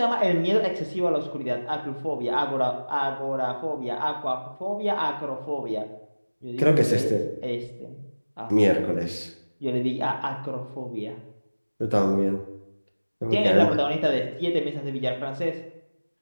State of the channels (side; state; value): both; inverted; correlation -1.00